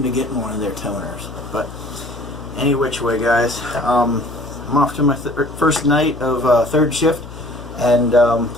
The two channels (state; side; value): noise; left; hum, 15 dB below the sound